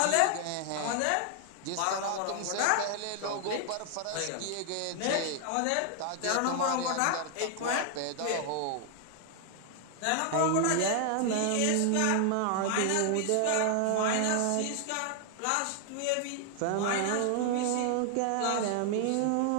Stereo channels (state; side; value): different; both; correlation 0.00